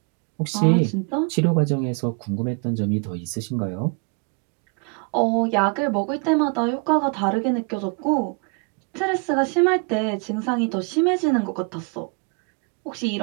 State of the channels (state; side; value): quieter; left; 34.6 dB